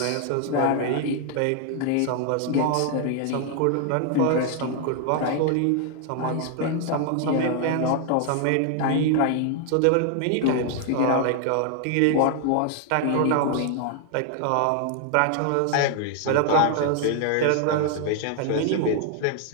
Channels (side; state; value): both; different; correlation 0.00